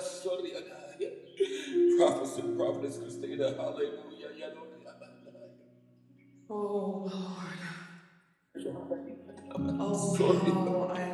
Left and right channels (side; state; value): both; identical; correlation 1.00